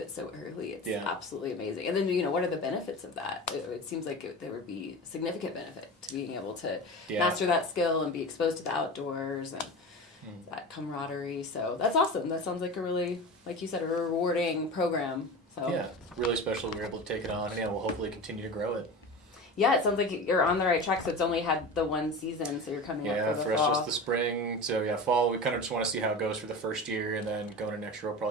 so early. It's absolutely amazing. And then, what are the benefits of that? It seems like there would be significant benefit to being able to master that skill and be exposed to the outdoors. And that camaraderie. So that's awesome. That sounds like a really, like you said, a rewarding program. So yeah, really special we were able to take it on, and we'll hopefully continue to grow it. Yeah, it sounds like you're on the right track. So it's only had the one season, so you're coming up for the for fall. us just the spring. So fall, we kind of just want to see how it goes for the first year, and then going into next year we'll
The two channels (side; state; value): both; normal; correlation 0.30